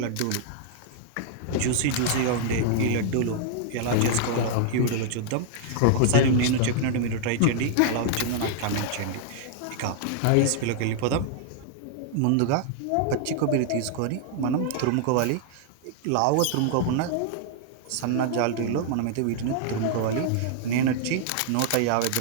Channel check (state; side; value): different; both; correlation -0.01